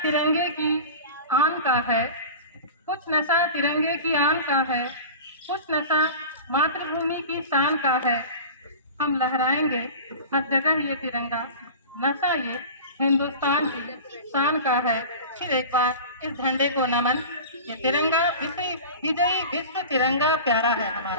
तिरंगे की आन का है, कुछ नशा तिरंगे की आन का है, कुछ नशा मातृभूमि की शान का है। हम लहराएंगे हर जगह ये तिरंगा, नशा ये हिंदुस्तान की शान का है। फिर एक बार इस झंडे को नमन। ये तिरंगा विजयी विश्व तिरंगा प्यारा है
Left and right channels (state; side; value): inverted; both; correlation -0.34